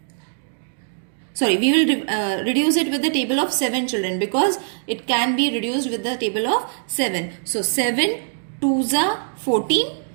we will reduce it with the table of 7, children, because it can be reduced with the table of 7. So 7 2s are 14,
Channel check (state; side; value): silent; left; digital silence